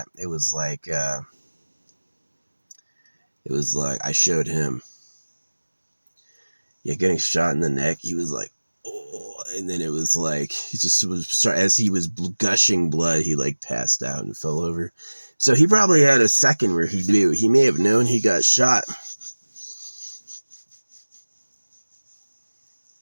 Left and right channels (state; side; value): inverted; both; correlation -1.00